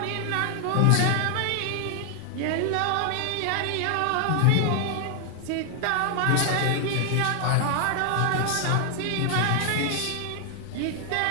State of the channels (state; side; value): different; both; correlation 0.00